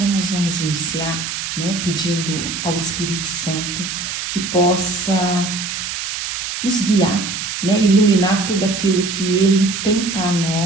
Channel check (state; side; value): noise; right; hiss, 5 dB below the sound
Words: nós vamos iniciar, pedindo ao Espírito Santo que possa nos guiar, iluminar tudo aquilo que Ele tem para